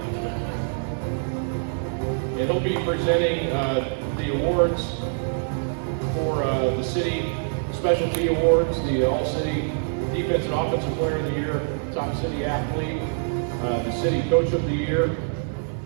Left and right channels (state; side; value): silent; left; digital silence